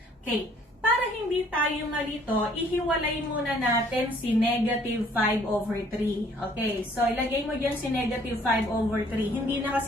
Okay. Para hindi tayo malito, ihiwalay muna natin si negative 5 over 3. Okay, so ilagay mo dyan si negative 5 over 3. Hindi na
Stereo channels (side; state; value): both; normal; correlation 0.59